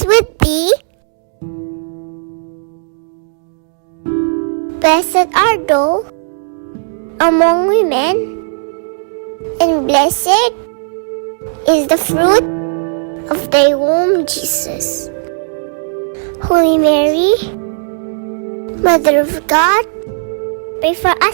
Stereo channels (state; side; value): silent; left; digital silence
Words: with thee. Blessed art thou among women, and blessed is the fruit of thy womb, Jesus. Holy Mary, Mother of God, pray for